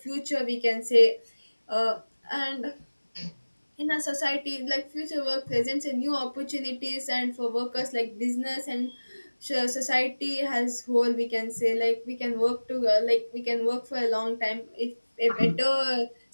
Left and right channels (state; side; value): inverted; both; correlation -1.00